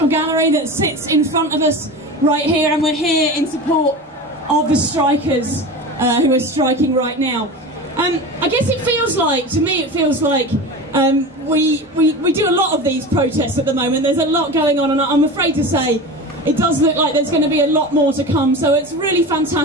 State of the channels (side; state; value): both; normal; correlation 0.30